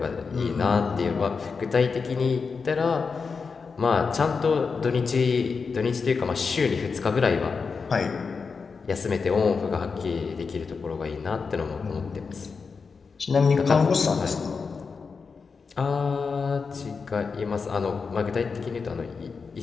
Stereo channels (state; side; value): quieter; right; 5.1 dB